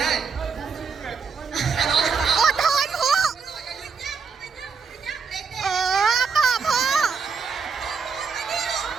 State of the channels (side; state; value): left; quieter; 5.5 dB